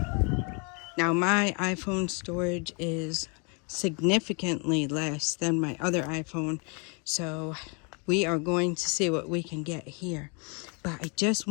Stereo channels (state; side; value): quieter; right; 34.1 dB